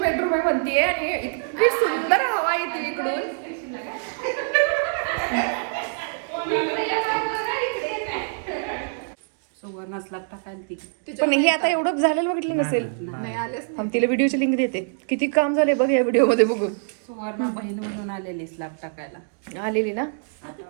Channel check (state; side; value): silent; left; digital silence